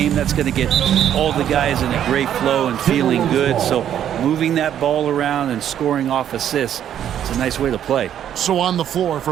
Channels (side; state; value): left; quieter; 10.1 dB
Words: That's going to get all the guys in a great flow and feeling good. So moving that ball around and scoring off assists, it's a nice way to play. So on the floor